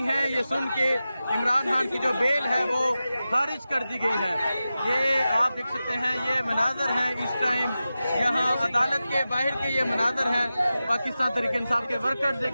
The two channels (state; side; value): inverted; both; correlation -0.93